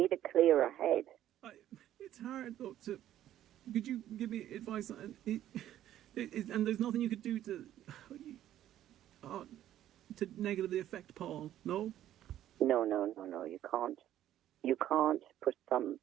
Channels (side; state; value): left; quieter; 12.2 dB